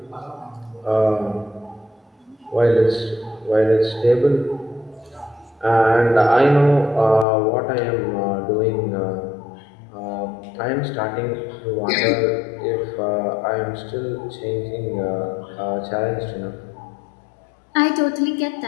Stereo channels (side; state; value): right; drops out; at 7.2 s